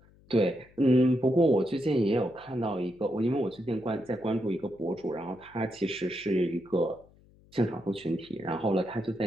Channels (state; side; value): noise; left; hum, 28 dB below the sound